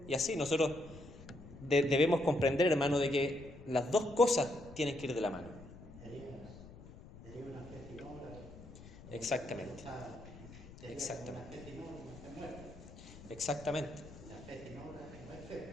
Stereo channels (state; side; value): noise; left; rumble, 17 dB below the sound